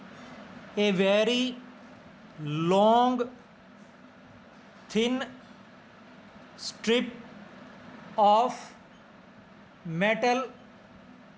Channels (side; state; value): both; identical; correlation 1.00